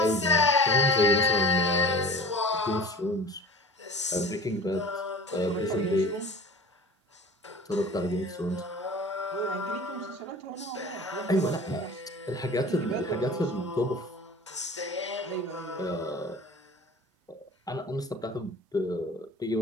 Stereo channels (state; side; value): normal; both; correlation 0.39